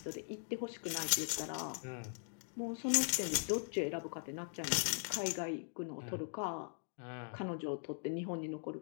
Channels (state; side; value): silent; right; digital silence